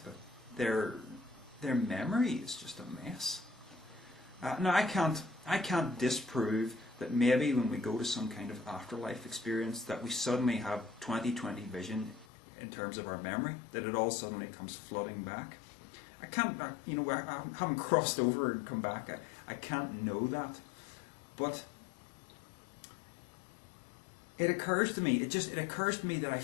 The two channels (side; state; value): right; drops out; at 12.2 s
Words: but their memory is just a mess. Now, I can't disprove that maybe when we go to some kind of afterlife experience that we suddenly have 20/20 vision in terms of our memory, that it all suddenly comes flooding back. I can't, I haven't crossed over and come back. I can't know that. But it occurs to me, it occurs to me that I